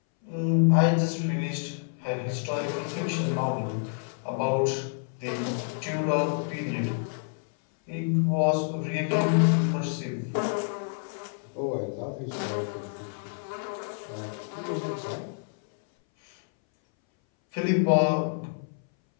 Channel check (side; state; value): right; silent; 59 dB below the other